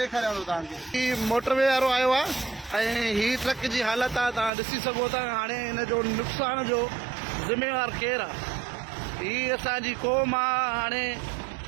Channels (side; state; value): left; drops out; at 4.5 s